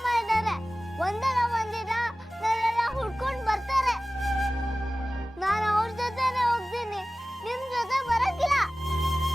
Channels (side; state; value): both; normal; correlation 0.97